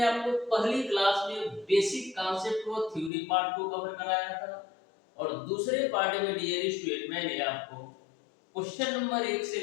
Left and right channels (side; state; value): right; drops out; at 3.1 s